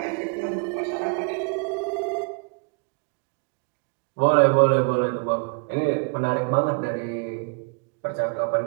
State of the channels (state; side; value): quieter; left; 34.3 dB